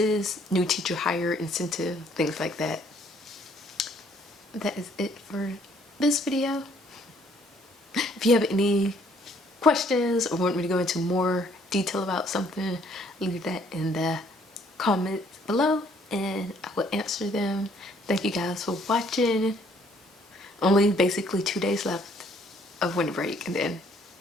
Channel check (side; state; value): both; normal; correlation 0.64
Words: new teacher hire incentive, things like that. That is it for this video. If you have any questions or want me to go into more detail about something, leave that in the comments below and I will answer them. Thank you guys for watching. Only basically 2 days left of winter break and then